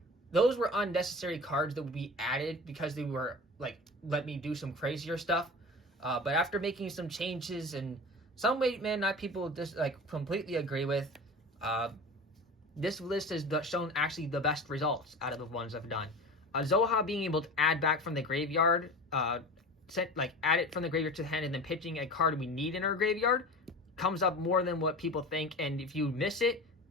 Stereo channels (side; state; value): both; normal; correlation 0.34